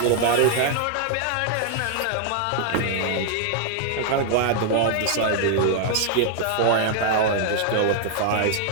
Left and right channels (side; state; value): both; different; correlation 0.00